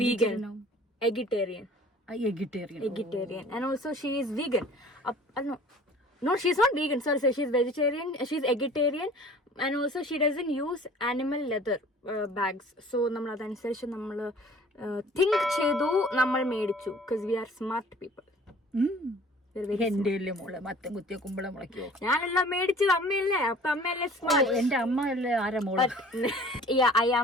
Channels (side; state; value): both; normal; correlation 0.49